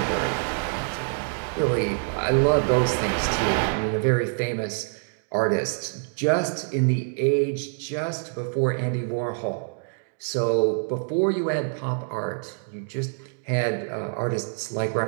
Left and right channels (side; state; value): left; silent; 61 dB below the other